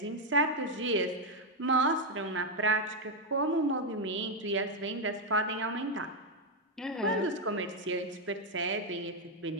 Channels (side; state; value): both; normal; correlation 0.02